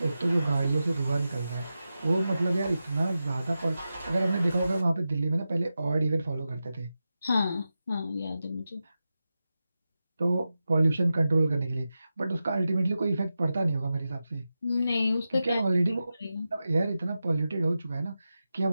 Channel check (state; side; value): inverted; both; correlation -0.92